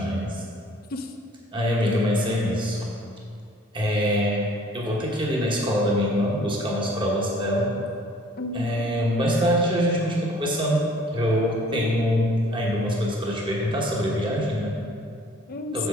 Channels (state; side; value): normal; both; correlation 0.55